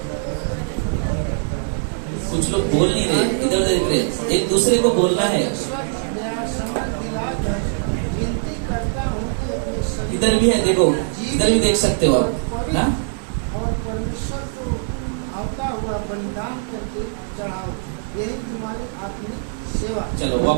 कुछ लोग बोल नहीं रहे, इधर देख रहे। एक दूसरे को बोलना है। इधर भी है, देखो, इधर भी देख सकते हो आप ना। और परमेश्वर को आता हुआ बलिदान करके चढ़ाओ, यही तुम्हारी आत्मिक सेवा। चलो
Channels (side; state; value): left; silent; digital silence